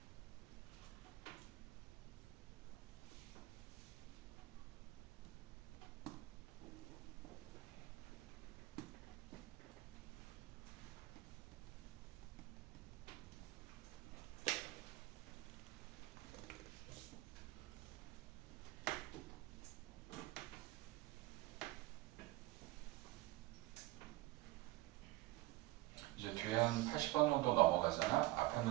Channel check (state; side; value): quieter; left; 18.6 dB